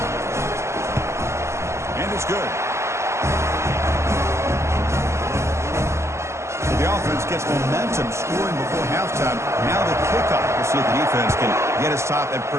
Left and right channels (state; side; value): late; left; 0.13 ms